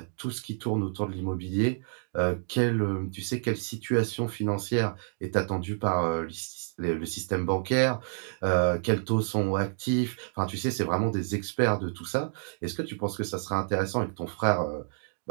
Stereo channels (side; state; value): left; silent; digital silence